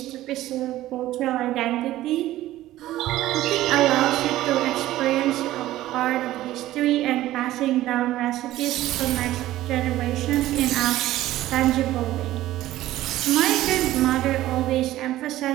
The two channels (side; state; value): left; quieter; 15.1 dB